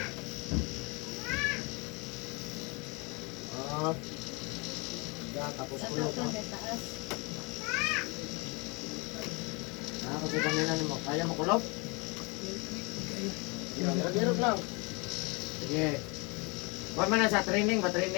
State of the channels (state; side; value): quieter; right; 29.3 dB